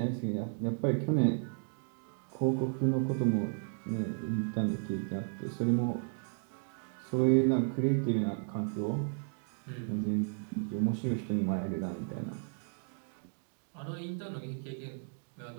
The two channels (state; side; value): silent; left; 55 dB below the other